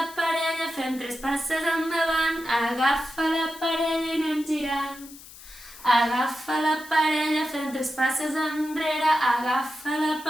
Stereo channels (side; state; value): left; noise; hiss, 18 dB below the sound